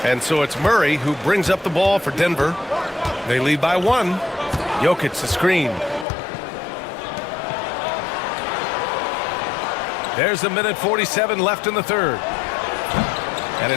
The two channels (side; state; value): right; drops out; at 6.1 s